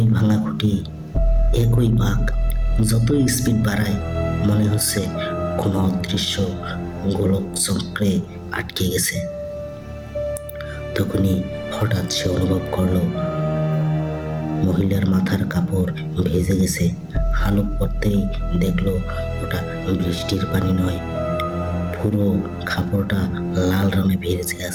ভাঙা খুঁটি, একই বাঁক। যতই স্পিড বাড়ায় মনে হচ্ছে কোনো অদৃশ্য গোলক চক্রে আটকে গেছে। তখনই হঠাৎ সে অনুভব করলো মহিলার মাথার কাপড় ভেজে গেছে। হালুক পড়তেই দেখলো ওটা বৃষ্টির পানি নয়, পুরো কাপড়টা লাল রঙে ভেজে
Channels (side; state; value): both; identical; correlation 1.00